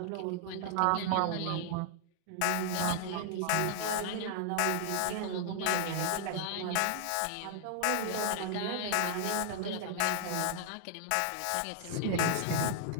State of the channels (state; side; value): different; both; correlation 0.00